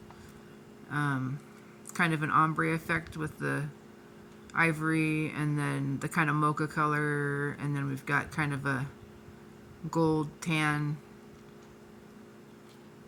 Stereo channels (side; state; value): both; identical; correlation 1.00